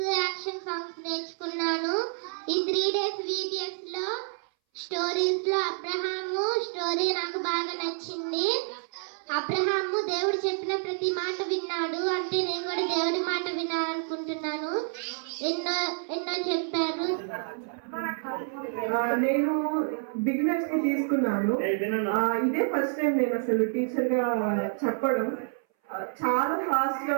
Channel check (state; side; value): silent; left; 59 dB below the other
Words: యాక్షన్ సాంగ్స్ నేర్చుకున్నాను. ఈ 3 days VBSలో స్టోరీస్లో అబ్రహాము స్టోరీ నాకు బాగా నచ్చింది. అబ్రహాము దేవుడు చెప్పిన ప్రతి మాట విన్నాడు. అంటే నేను కూడా దేవుడి మాట వినాలనుకుంటున్నాను. ఎన్నో చెప్పారు. నేను బిగినర్స్ కి తీసుకున్నాను. ఇదే ఫస్ట్ టైం నేను అసలు టీచర్ గా చెప్పడం. చాలా ఫాస్ట్ గా